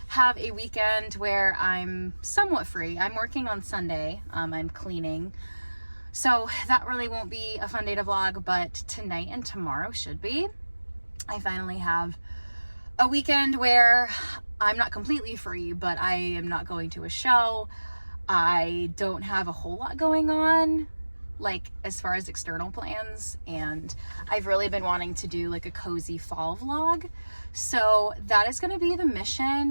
have a weekend where I'm somewhat free. I'm working on Sunday, I'm cleaning. So that really won't be a fun day to vlog, but tonight and tomorrow should be. I finally have a weekend where I'm not completely free, but I am not going to a show. I don't have a whole lot going on, like as far as external plans, and I've really been wanting to do like a cozy fall vlog. So that is gonna be the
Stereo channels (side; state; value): both; inverted; correlation -1.00